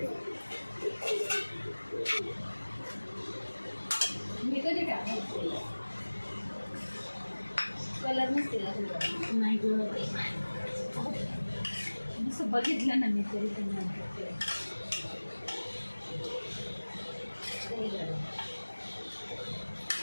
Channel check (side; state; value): both; inverted; correlation -1.00